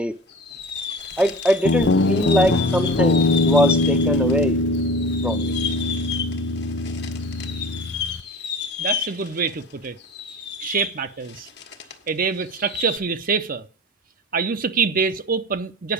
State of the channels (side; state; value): both; normal; correlation 0.36